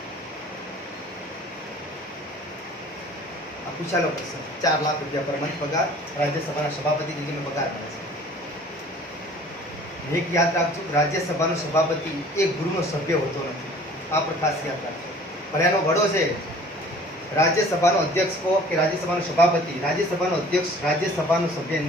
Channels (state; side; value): normal; both; correlation 0.49